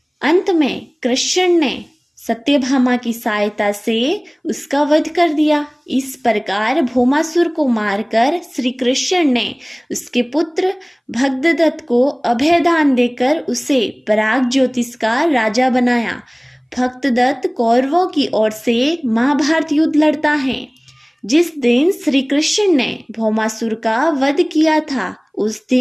अंत में कृष्ण ने सत्यभामा की सहायता से उसका वध कर दिया। इस प्रकार भौमासुर को मारकर श्री कृष्ण ने उसके पुत्र भगदत्त को अभयदान देकर उसे पराग ज्योतिष का राजा बनाया। भगदत्त कौरवों की ओर से महाभारत युद्ध लड़ता है। जिस दिन श्री कृष्ण ने भौमासुर का वध किया था, उस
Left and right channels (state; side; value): identical; both; correlation 1.00